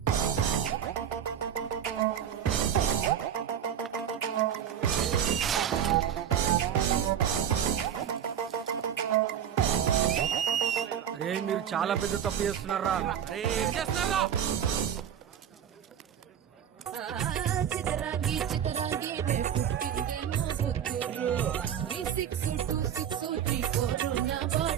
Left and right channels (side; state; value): left; quieter; 9.1 dB